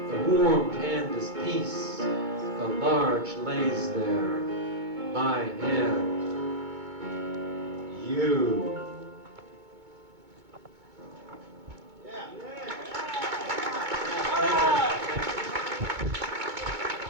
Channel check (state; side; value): late; left; 2.2 ms